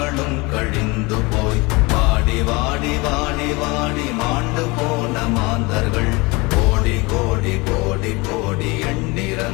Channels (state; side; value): quieter; right; 25.3 dB